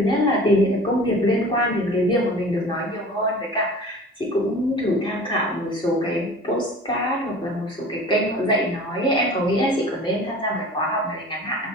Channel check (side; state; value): both; normal; correlation 0.42